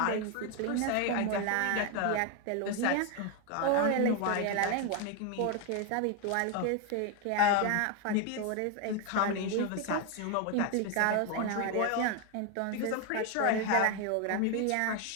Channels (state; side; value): different; both; correlation 0.01